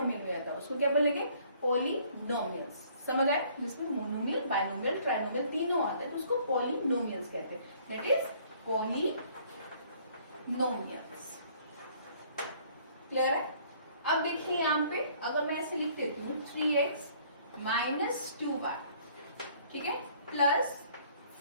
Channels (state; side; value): inverted; both; correlation -0.59